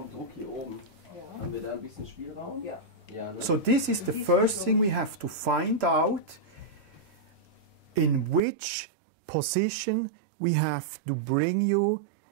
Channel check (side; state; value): left; drops out; at 8.4 s